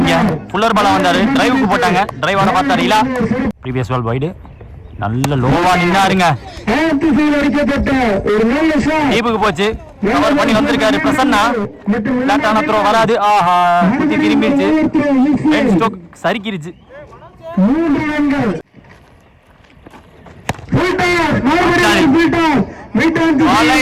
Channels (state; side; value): identical; both; correlation 1.00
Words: ஃபுல்லர் பால் வந்தாரு. டிரைவுக்கு போட்டாங்க. டிரைவான பார்த்தாரு இலா. Previous ball wide. நல்ல லோவா நின்னாருங்க. டீப்புக்கு போச்சு. கவர் பண்ணி வந்திருக்காரு பிரசன்னா. லேட்டான த்ரோ வராது. ஆஹா குத்தி திரும்பிடுச்சு. Pen stroke சரிக்கிருச்சு.